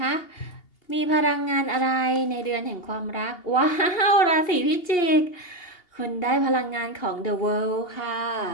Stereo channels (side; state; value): right; late; 2.8 ms